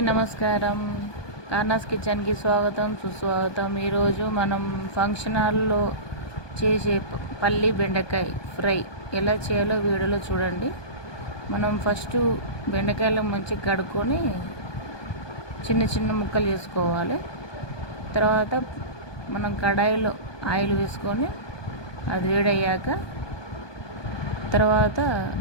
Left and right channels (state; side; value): late; right; 1.2 ms